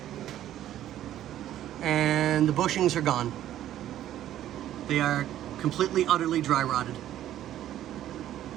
And the bushings are gone. They are completely, utterly dry rotted.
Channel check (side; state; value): left; quieter; 12.3 dB